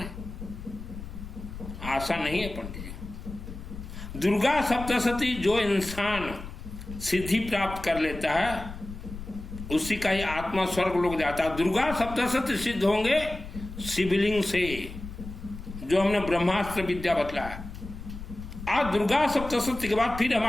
आसान नहीं है पंडित जी। दुर्गा सप्तशती जो इंसान सिद्धि प्राप्त कर लेता है उसी का ही आत्मा स्वर्ग लोग जाता है। दुर्गा सप्तशती सिद्ध होंगे शिवलिंग से, जो हमने ब्रह्मास्त्र विद्या बतलाया। आज दुर्गा सप्तशती के बाद फिर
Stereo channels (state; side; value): noise; left; rumble, 11 dB below the sound